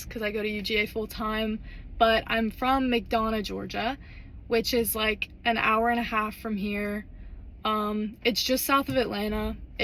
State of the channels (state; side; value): identical; both; correlation 1.00